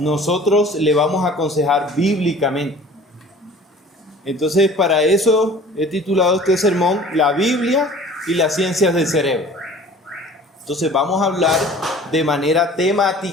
le vamos a aconsejar bíblicamente. Entonces, para eso he titulado este sermón La Biblia y las ciencias del cerebro. Entonces, vamos a hablar de manera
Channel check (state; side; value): normal; both; correlation 0.47